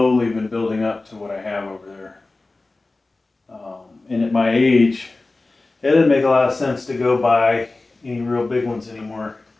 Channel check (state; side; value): quieter; right; 3.3 dB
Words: been building up to what I have over there. And at my age, it doesn't make a lot of sense to go buy any real big ones anymore.